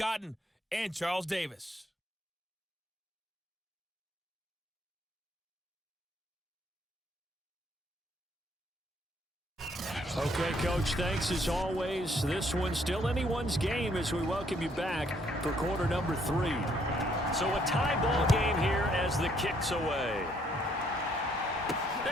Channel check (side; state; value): both; normal; correlation 0.68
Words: and Charles Davis. Okay, Coach, thanks as always. This one's still anyone's game as we welcome you back for quarter number 3. So a tie ball game here as the kick's away.